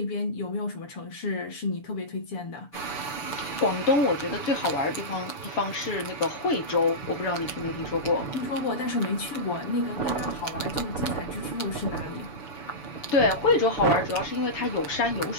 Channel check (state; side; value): late; right; 7.0 ms